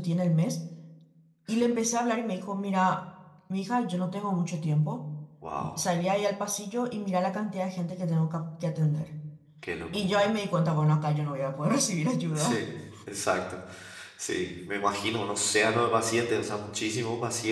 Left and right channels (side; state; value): both; identical; correlation 1.00